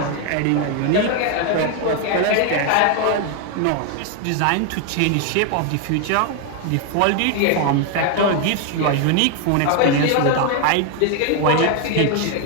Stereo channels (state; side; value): different; both; correlation 0.01